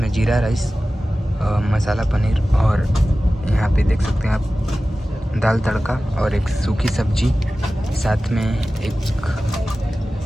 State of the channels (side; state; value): both; normal; correlation 0.96